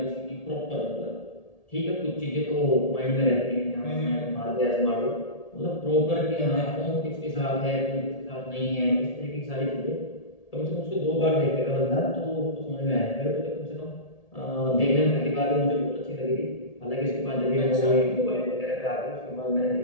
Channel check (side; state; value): right; late; 1.8 ms